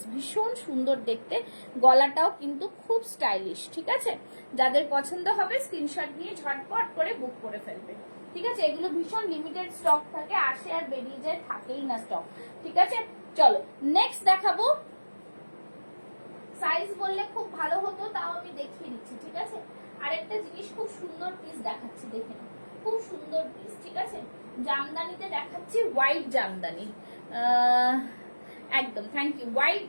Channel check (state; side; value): inverted; both; correlation -1.00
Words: ভীষণ সুন্দর দেখতে, গলাটাও কিন্তু খুব স্টাইলিশ, ঠিক আছে? যাদের পছন্দ হবে স্ক্রিনশট নিয়ে ঝটপট করে বুক করে ফেলবে, ঠিক আছে? এগুলো ভীষণ লিমিটেড স্টক থাকে, আসে আর বেরিয়ে যায়, থাকেই না স্টক, ঠিক আছে? চলো নেক্সট দেখাবো। সাইজ বললে খুব ভালো হতো, তাও আমি দেখিয়ে দিচ্ছি, ঠিক আছে? আরেকটা জিনিস খুব সুন্দর পিস দেখাচ্ছি, দেখে নাও, খুব সুন্দর পিস, ঠিক আছে? জামদানিতে দেখাচ্ছি, হোয়াইট জামদানি, একদম থ্যাংক ইউ। হোয়াইট